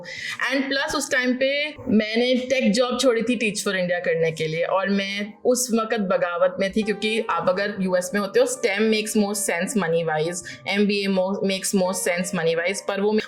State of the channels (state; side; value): identical; both; correlation 1.00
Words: एंड प्लस उस टाइम पे मैंने टेक जॉब छोड़ी थी टीच फॉर इंडिया करने के लिए, और मैं उस वक्त बगावत में थी, क्योंकि आप अगर यूएस में होते हो, stem makes most sense money wise, MBA makes most sense money wise, पर वो